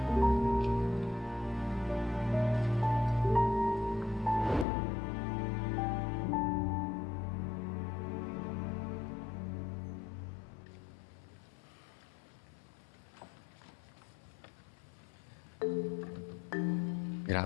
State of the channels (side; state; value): right; drops out; at 4.7 s